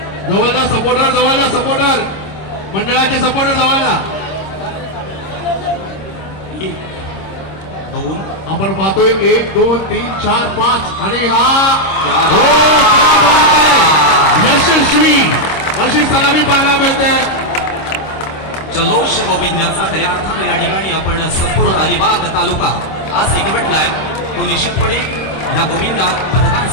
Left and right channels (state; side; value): late; right; 26 ms